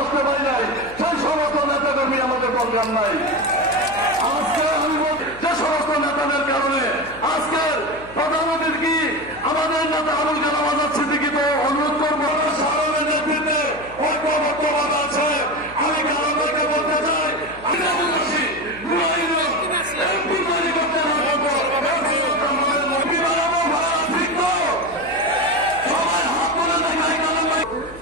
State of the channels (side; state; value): left; noise; hum, 19 dB below the sound